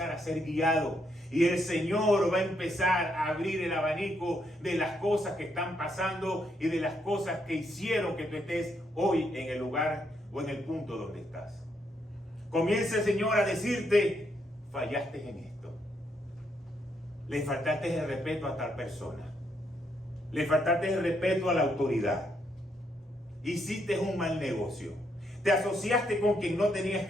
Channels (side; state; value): both; normal; correlation 0.76